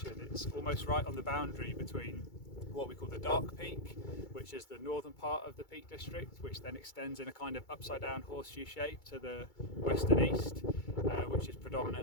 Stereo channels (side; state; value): right; late; 2.3 ms